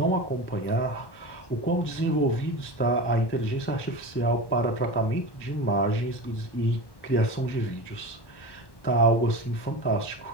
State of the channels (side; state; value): right; late; 1.1 ms